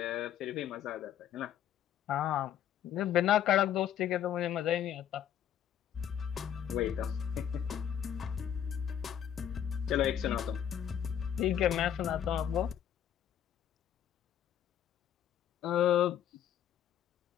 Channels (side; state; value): right; quieter; 9.8 dB